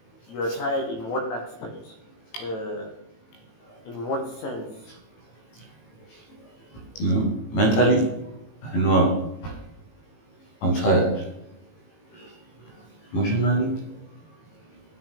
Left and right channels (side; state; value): right; late; 18 ms